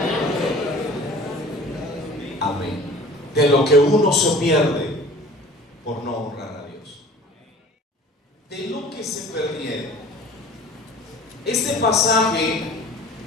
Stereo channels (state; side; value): normal; both; correlation 0.45